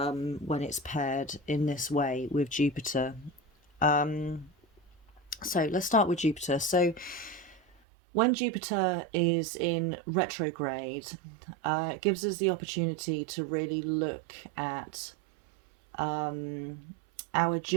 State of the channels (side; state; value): left; drops out; at 7.8 s